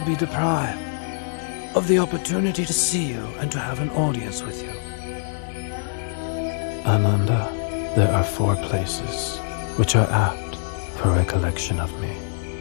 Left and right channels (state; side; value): silent; right; 63 dB below the other